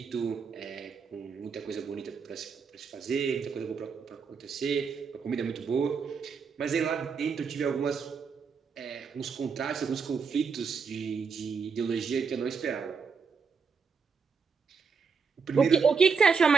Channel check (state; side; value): quieter; left; 5.6 dB